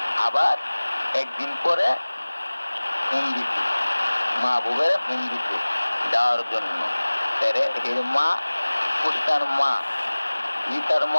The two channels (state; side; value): inverted; both; correlation -1.00